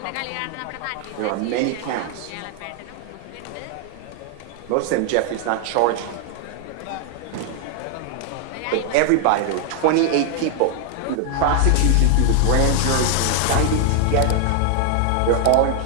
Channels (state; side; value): different; both; correlation 0.00